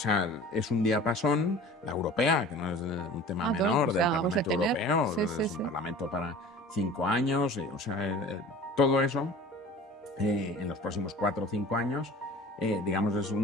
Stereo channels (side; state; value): both; normal; correlation 0.41